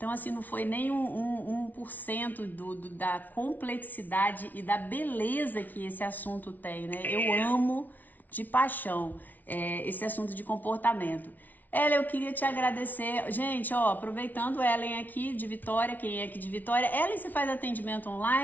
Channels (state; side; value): late; right; 0.080 ms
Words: assim, não foi nem 1% da complexidade e da beleza que esse assunto tem, né? Eu amo de paixão esse assunto de comportamento. Ellen, eu queria te agradecer. Gente, ó, aproveitando Ellen aqui de Vitória, quem é aqui de Vitória. Ellen, você faz atendimento